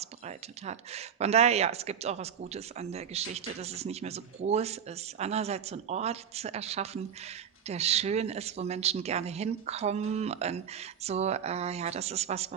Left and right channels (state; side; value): quieter; left; 8.0 dB